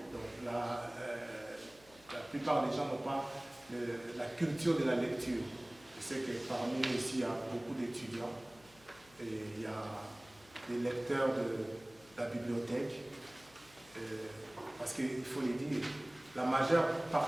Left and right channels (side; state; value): left; noise; hum, 26 dB below the sound